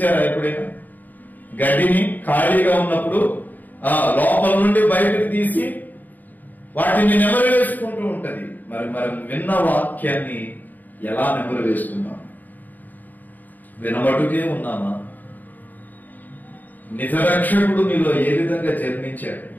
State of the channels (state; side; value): late; right; 0.085 ms